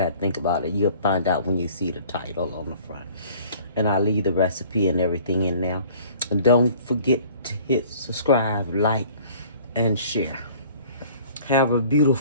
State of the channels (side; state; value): both; inverted; correlation -0.51